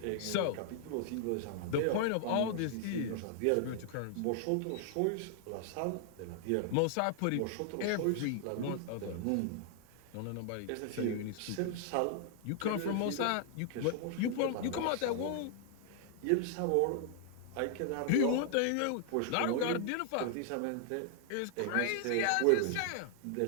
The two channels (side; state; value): both; different; correlation -0.01